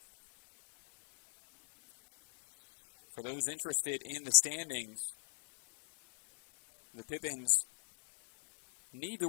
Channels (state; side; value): silent; right; digital silence